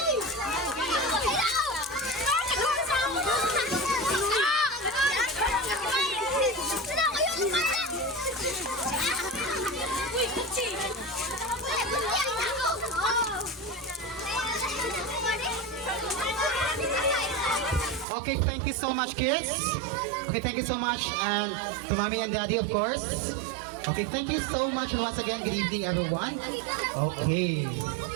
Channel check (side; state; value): left; drops out; at 18.1 s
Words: Okay, thank you so much, kids. Okay, thank you so much, and to mommy and daddy, of course. Okay, thank you so much, and once again, good evening, everyone. Okay,